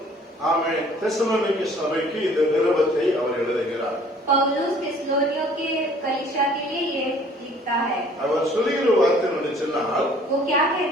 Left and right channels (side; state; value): both; normal; correlation 0.55